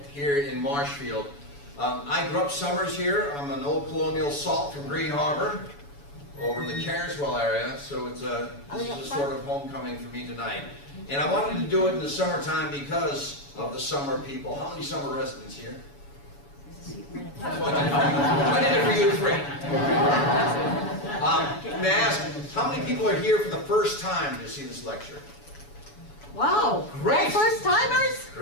here in Marshfield. I grew up summers here. I'm an old colonial salt from Green Harbor over in the Carswell area, so this is a sort of homecoming for me tonight. And I wanted to do it in the summertime because of the summer people. How many summer residents here? I did it for you free. May I ask, how many people are here for the first time to see this lecture? Wow. Great. First timers?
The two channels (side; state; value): right; late; 7.0 ms